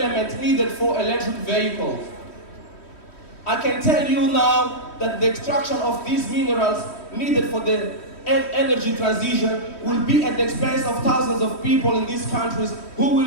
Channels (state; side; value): late; right; 3.1 ms